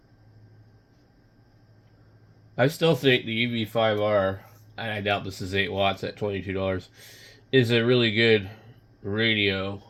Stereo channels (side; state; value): both; identical; correlation 1.00